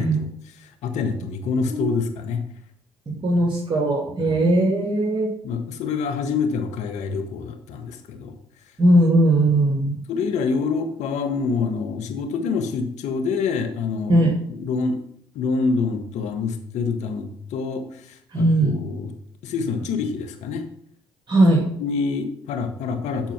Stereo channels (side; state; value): both; normal; correlation 0.66